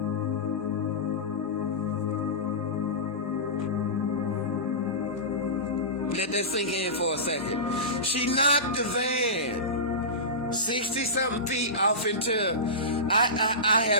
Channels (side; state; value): both; normal; correlation -0.19